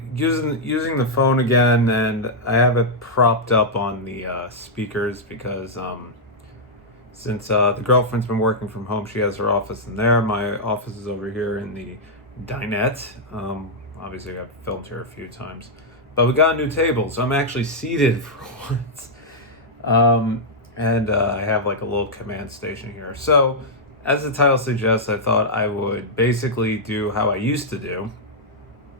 Using the phone again, and I have it propped up on the speakers because since the girlfriend's been working from home, she has her office in there. My office is over here in the dinette. Obviously, I've filmed here a few times, but we got a new table, so I'm actually seated for once. And I have like a little command station here. So, as the title suggests, I thought I would basically do how I used to do,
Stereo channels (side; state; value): both; normal; correlation -0.06